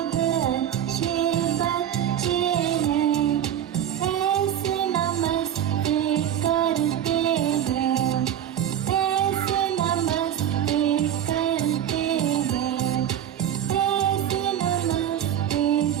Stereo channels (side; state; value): left; quieter; 10.3 dB